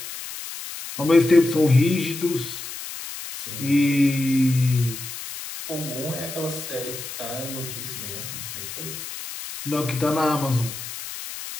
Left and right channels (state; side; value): noise; left; hiss, 9 dB below the sound